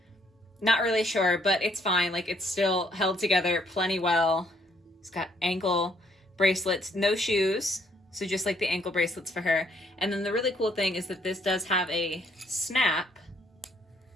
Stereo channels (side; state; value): both; normal; correlation 0.67